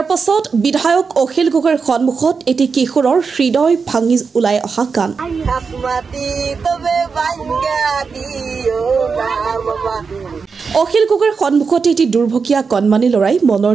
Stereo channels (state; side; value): quieter; left; 5.3 dB